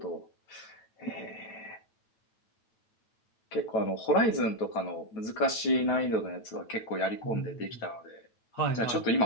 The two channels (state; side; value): late; right; 9.2 ms